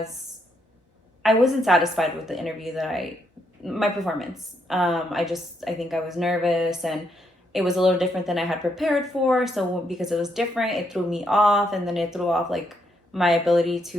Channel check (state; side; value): normal; both; correlation 0.76